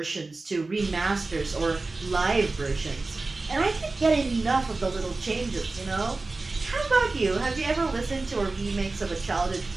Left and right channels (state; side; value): quieter; left; 3.5 dB